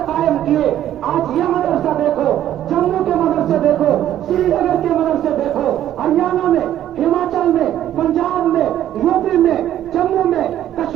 قائم کیے. آج یہ مدرسہ دیکھو, جموں کے مدرسے دیکھو, سری نگر کے مدرسے دیکھو, ہریانہ میں, ہماچل میں, پنجاب میں, یو پی میں, جموں میں,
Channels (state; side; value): quieter; left; 11.8 dB